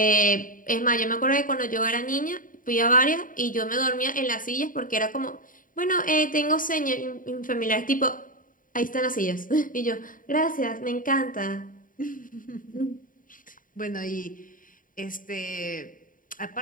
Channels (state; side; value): late; right; 0.39 ms